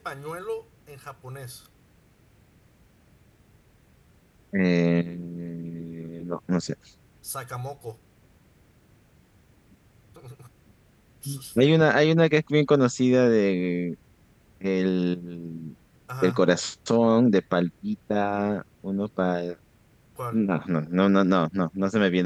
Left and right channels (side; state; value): both; identical; correlation 1.00